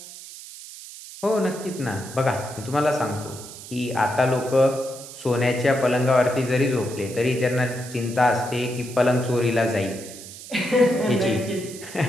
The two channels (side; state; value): right; noise; hiss, 14 dB below the sound